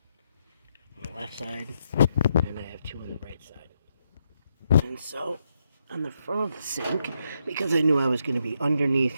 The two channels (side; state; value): both; inverted; correlation -0.79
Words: on the left side, and I have 2 on the right side. And so on the front of the sink, because I knew I was going to be underneath